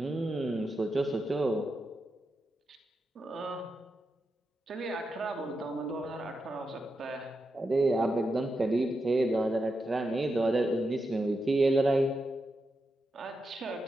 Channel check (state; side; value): normal; both; correlation 0.87